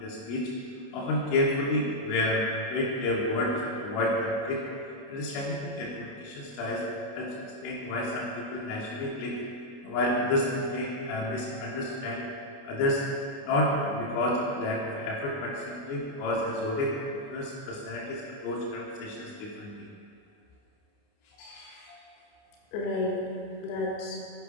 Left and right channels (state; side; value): late; right; 29 ms